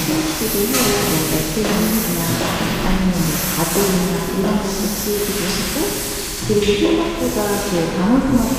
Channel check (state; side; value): identical; both; correlation 1.00